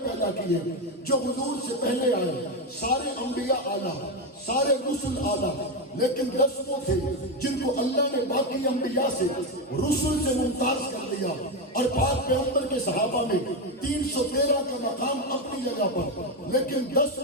پیدا کیے جو حضور سے پہلے آئے۔ سارے انبیاء اعلیٰ، سارے رسول اعلیٰ، لیکن 10 وہ تھے جن کو اللہ نے باقی انبیاء سے رسول سے ممتاز کر دیا، اور پاک پیغمبر کے صحابہ میں 313 کا مقام اپنی جگہ پر، لیکن 10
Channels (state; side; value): normal; both; correlation 0.10